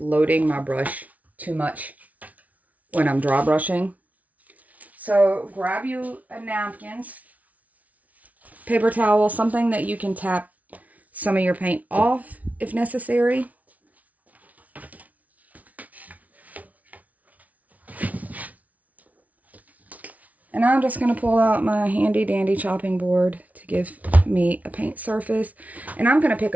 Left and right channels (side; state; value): left; late; 0.071 ms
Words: my brush too much when I'm dry brushing. So grab you a napkin, paper towel, something that you can tap some of your paint off if necessary. And I'm just going to pull out my handy dandy chopping board to give me a paint surface. And I'm going to pick